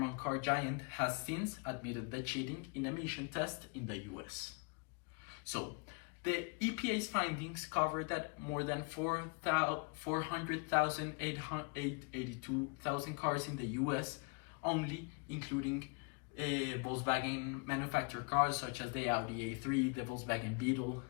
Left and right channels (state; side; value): quieter; right; 34.0 dB